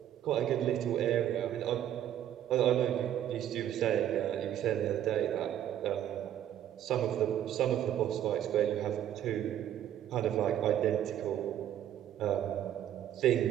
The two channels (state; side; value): quieter; left; 11.0 dB